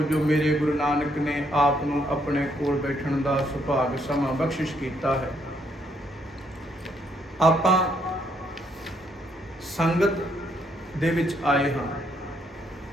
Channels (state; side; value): normal; both; correlation 0.72